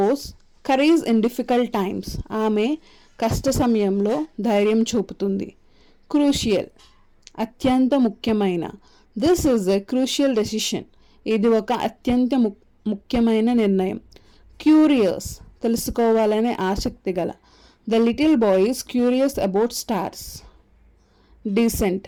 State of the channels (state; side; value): identical; both; correlation 1.00